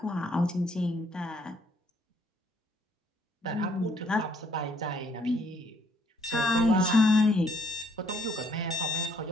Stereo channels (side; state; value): both; normal; correlation 0.67